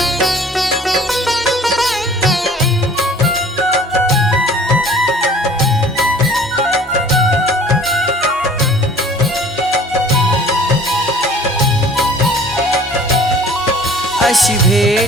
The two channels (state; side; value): normal; both; correlation 0.49